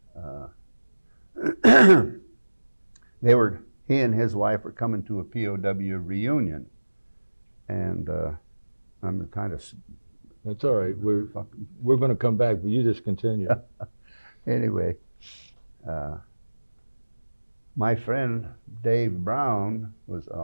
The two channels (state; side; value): inverted; both; correlation -1.00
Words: he and his wife were coming to a POW reunion, and I'm kind of. That's all right. We're going to come back, but you just continue. Anyway, my friend Dave Brown